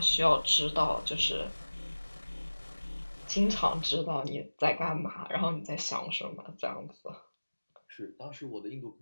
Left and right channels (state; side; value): inverted; both; correlation -1.00